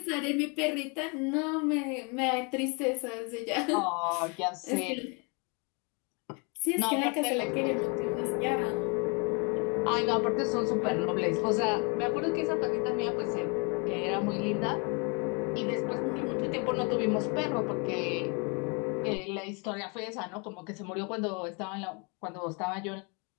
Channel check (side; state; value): right; quieter; 33.0 dB